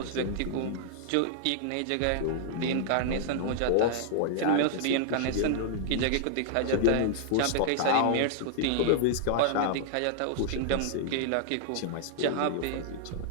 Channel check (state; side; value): different; both; correlation -0.01